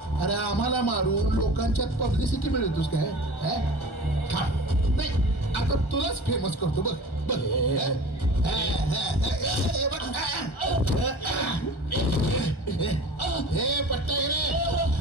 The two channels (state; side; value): late; right; 1.4 ms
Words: अरे आम्हाला मारून लोकांच्यात पब्लिसिटी मिळवतोस काय? नाही, आता तुलाच फेमस करतो. बघ बघ. हे पट्टा रे.